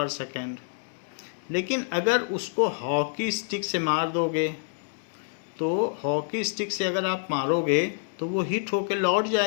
second. लेकिन अगर उसको हॉकी स्टिक से मार दोगे, तो हॉकी स्टिक से अगर आप मारोगे तो वो हिट होके लौट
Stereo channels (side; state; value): right; silent; 60 dB below the other